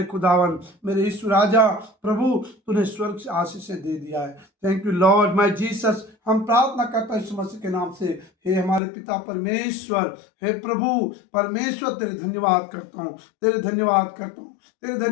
खुदावन, मेरे यीशु राजा, प्रभु तूने स्वर्ग से आशीष दे दिया है। Thank you Lord my Jesus. हम प्रार्थना करते हैं यीशु मसीह के नाम से। हे हमारे पिता परमेश्वर, हे प्रभु परमेश्वर, तेरे धन्यवाद करता हूँ, तेरे धन्यवाद करता हूँ, तेरे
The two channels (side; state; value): right; drops out; at 8.8 s